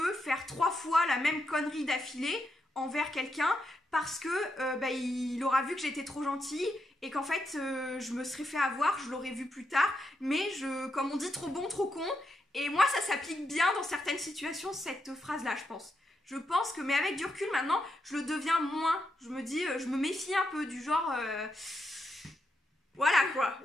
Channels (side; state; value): both; normal; correlation 0.83